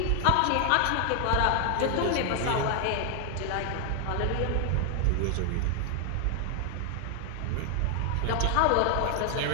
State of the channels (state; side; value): different; both; correlation 0.00